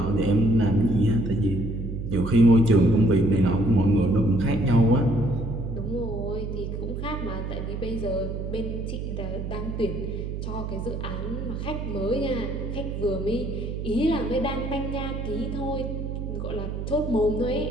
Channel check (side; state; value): right; noise; hum, 5 dB below the sound